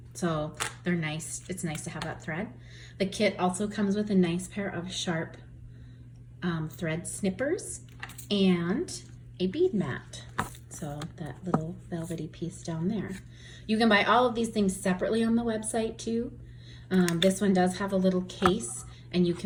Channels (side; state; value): both; identical; correlation 1.00